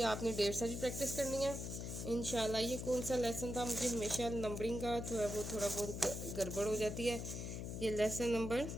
आपने 1.5 भी प्रैक्टिस करनी है इंशाल्लाह। ये कौन सा लेसन था, मुझे हमेशा नंबरिंग का जो है वो थोड़ा बहुत गड़बड़ हो जाती है। ये लेसन नंबर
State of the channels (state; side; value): noise; left; hum, 5 dB below the sound